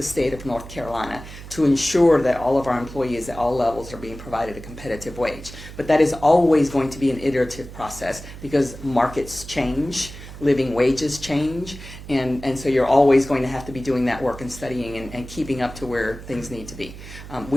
state of North Carolina to ensure that all of our employees at all levels are being provided a competitive wage. But that is always going to be an iterative process because markets change, living wages change, and so you're always going to have to be doing that work and studying and keeping up to where things need to be.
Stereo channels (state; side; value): noise; right; hum, 14 dB below the sound